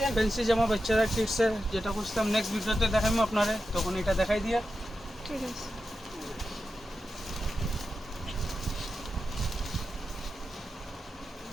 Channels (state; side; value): normal; both; correlation 0.90